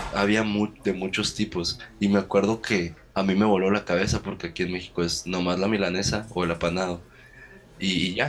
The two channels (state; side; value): identical; both; correlation 1.00